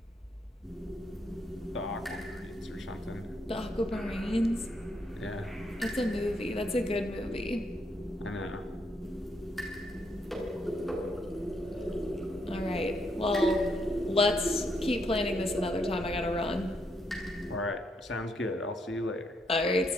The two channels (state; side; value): normal; both; correlation 0.76